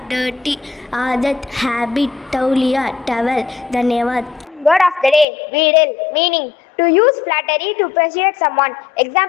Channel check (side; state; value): right; drops out; at 5.2 s